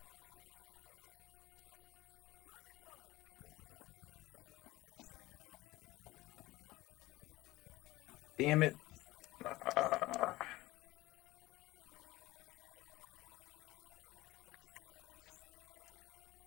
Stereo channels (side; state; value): right; quieter; 18.8 dB